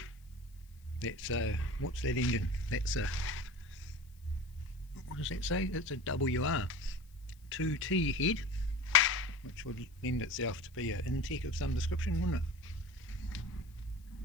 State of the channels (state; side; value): noise; left; hiss, 30 dB below the sound